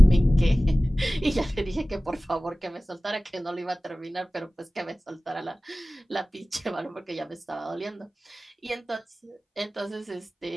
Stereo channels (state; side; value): normal; both; correlation 0.97